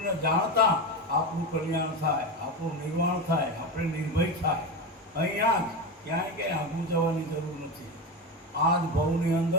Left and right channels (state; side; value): normal; both; correlation 0.19